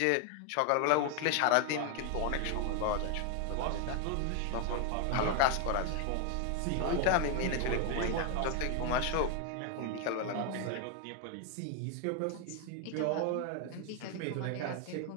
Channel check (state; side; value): different; both; correlation 0.01